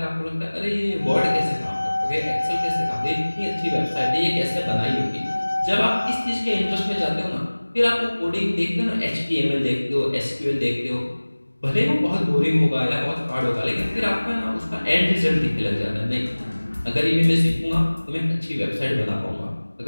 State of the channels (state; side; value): inverted; both; correlation -1.00